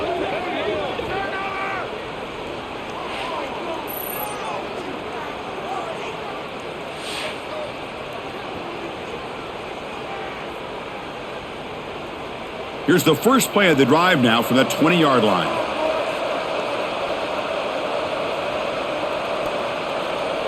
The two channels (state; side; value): identical; both; correlation 1.00